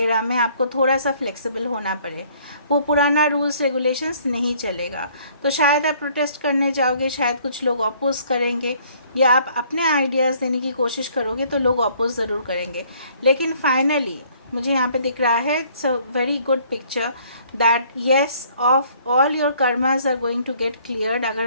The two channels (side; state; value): both; inverted; correlation -0.60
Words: में आपको थोड़ा सा फ्लेक्सिबल होना पड़े, वो पुराना रूल्स रेगुलेशंस नहीं चलेगा। तो शायद आप प्रोटेस्ट करने जाओगे, शायद कुछ लोग अपोज करेंगे, या आप अपने आइडियाज़ देने की कोशिश करोगे तो लोग अपोज ज़रूर करेंगे। लेकिन फाइनली मुझे यहाँ पे दिख रहा है, it's a very good picture that yes of all your karmas are going to get cleared.